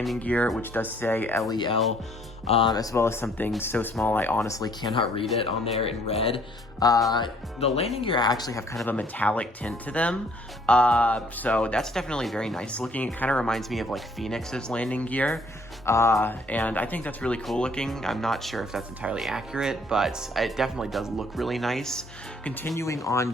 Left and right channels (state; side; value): normal; both; correlation 0.61